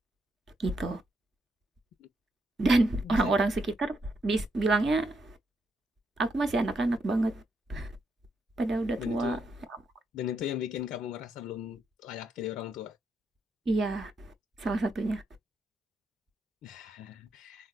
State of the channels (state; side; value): normal; both; correlation 0.79